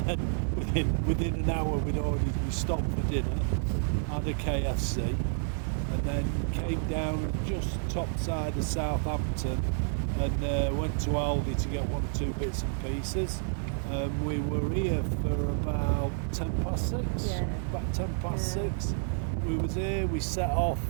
then within an hour we stopped for dinner, had a KFC, and then came down just top side of Southampton and went to Aldi to get 1 or 2 bits and pieces. We were here for about 6:10. Yeah. About 6:10. We was here. We set off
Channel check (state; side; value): silent; left; digital silence